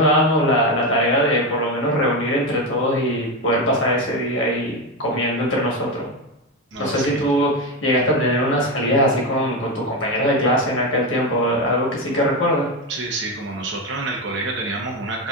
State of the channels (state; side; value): normal; both; correlation 0.13